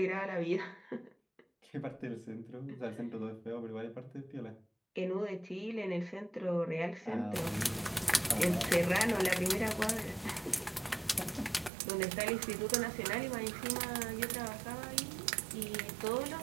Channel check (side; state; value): left; drops out; at 11.7 s